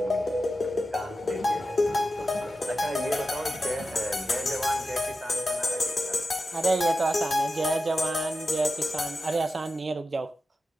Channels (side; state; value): both; normal; correlation 0.91